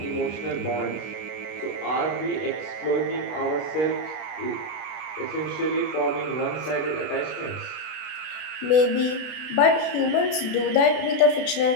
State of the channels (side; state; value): right; late; 32 ms